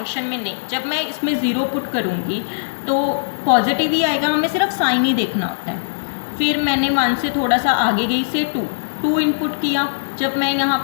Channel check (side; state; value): right; silent; 66 dB below the other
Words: में नहीं। जब मैं इसमें 0 पुट करूँगी तो पॉजिटिव ही आएगा, हमें सिर्फ साइन ही देखना होता है। फिर मैंने 1 से थोड़ा सा आगे गई से 2 इनपुट किया। जब मैं यहाँ